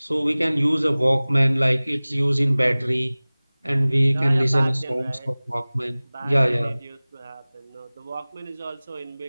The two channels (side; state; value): both; inverted; correlation -0.99